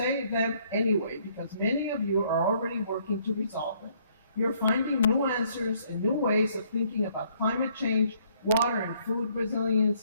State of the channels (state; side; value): inverted; both; correlation -0.65